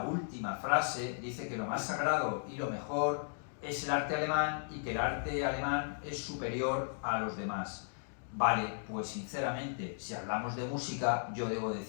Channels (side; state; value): right; silent; digital silence